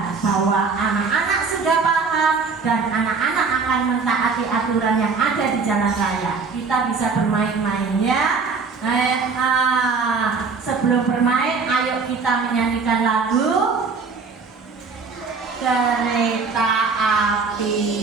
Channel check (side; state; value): left; quieter; 4.8 dB